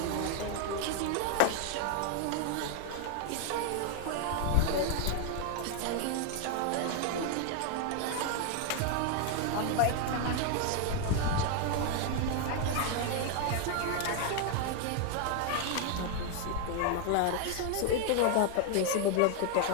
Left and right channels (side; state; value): both; different; correlation 0.00